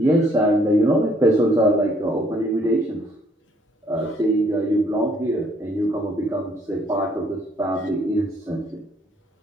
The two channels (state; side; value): normal; both; correlation 0.65